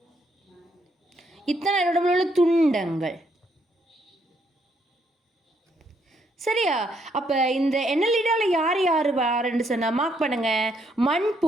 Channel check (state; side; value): normal; both; correlation 0.73